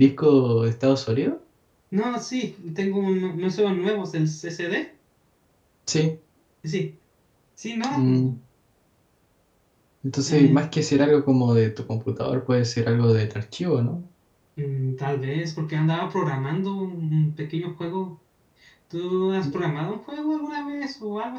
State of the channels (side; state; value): both; identical; correlation 1.00